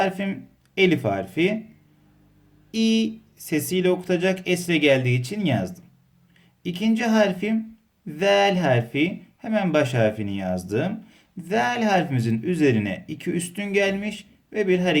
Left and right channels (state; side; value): identical; both; correlation 1.00